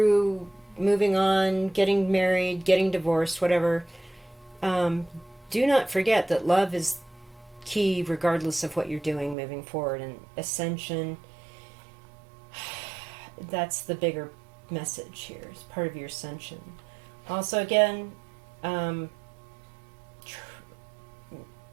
moving on, getting married, getting divorced, whatever. Do not forget that love is key regardless of what you're doing moving forward. And ascension, that's the bigger message here. It's part of your ascension. Also, again,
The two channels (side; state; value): left; drops out; at 9.3 s